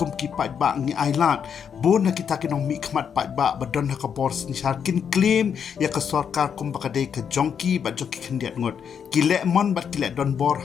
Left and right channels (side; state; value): right; quieter; 7.5 dB